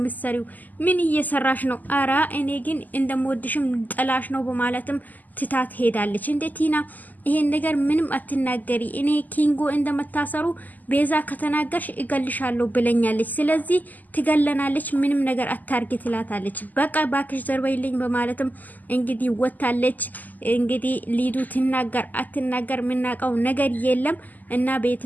ምን እየሰራሽ ነው? አራ እኔ ግን እንደምወድሽም ጥላሽ ነው በማለትም ትታት ሄዳለች። እንዴ ቲና ይሄን ነገር ምንም አትናገሪ፣ እኔ ኪንጎ እንደመታሰሩ ቤዛ ከተናገርሽ እገልሻለሁ ብለኛለች፣ ስለዚህ ትገለናለች፣ ምንም ነገር አታርጊ ትላታለች። በቃ ባክሽ ዘርበይልኝ በማለትም እንግዲህ ወታለች። እንግዲህ ሊዱ ትናገር አትናገር ምናቀው ነገር የለም። እና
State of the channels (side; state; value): right; late; 0.083 ms